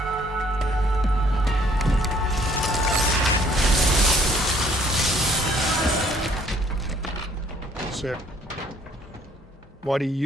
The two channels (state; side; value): normal; both; correlation 0.61